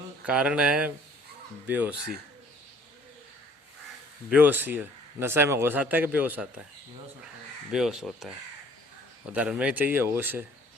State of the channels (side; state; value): both; normal; correlation 0.56